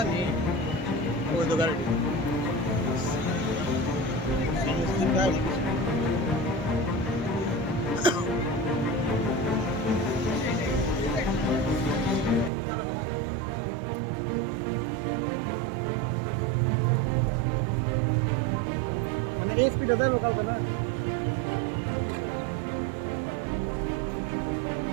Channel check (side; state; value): left; drops out; at 12.5 s